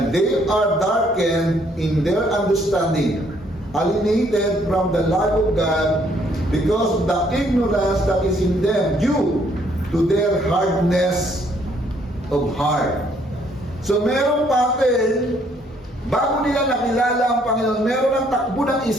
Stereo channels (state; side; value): normal; both; correlation 0.66